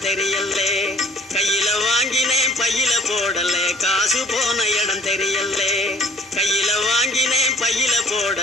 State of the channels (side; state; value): both; normal; correlation 0.53